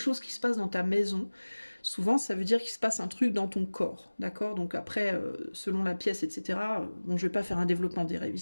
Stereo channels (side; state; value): both; inverted; correlation -1.00